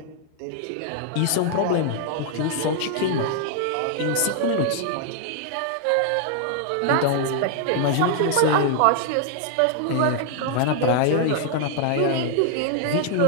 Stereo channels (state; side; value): different; both; correlation 0.00